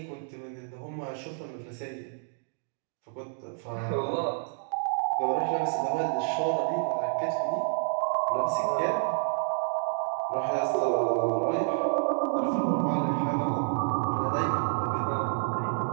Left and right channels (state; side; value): silent; left; digital silence